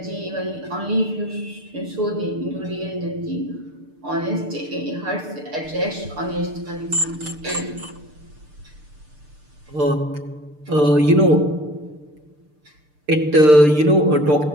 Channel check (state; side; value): late; left; 6.7 ms